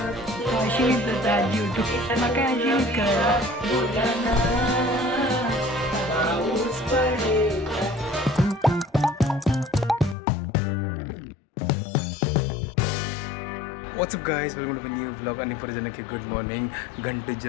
अशी करता आजी म्हाका आजी कळ्ळा बोलाना पाऊस पडेल. What's up guys welcome to new blog आणि परजनके गुड मॉर्निंग घंटे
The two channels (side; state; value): right; drops out; at 10.2 s